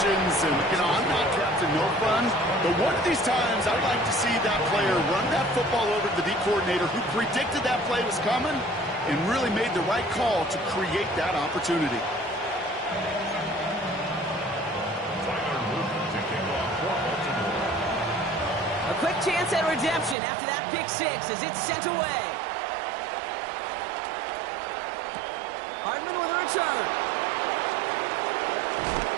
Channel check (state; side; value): drops out; left; at 20.2 s